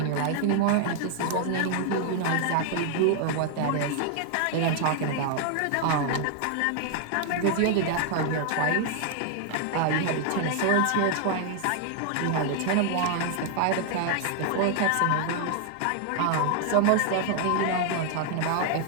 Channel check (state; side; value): different; both; correlation 0.00